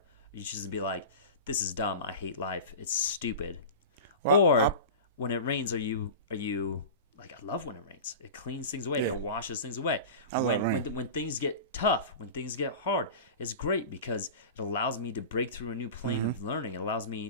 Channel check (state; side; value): inverted; both; correlation -0.31